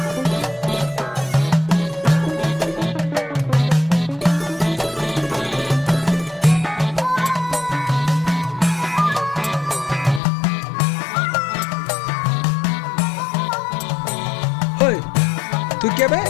ওই, তুই কে বে?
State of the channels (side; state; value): right; drops out; at 10.2 s